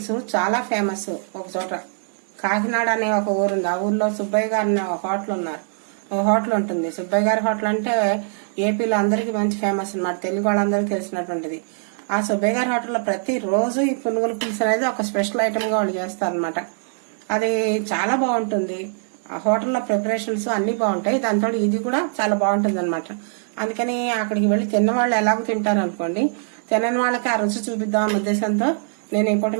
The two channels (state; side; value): silent; left; digital silence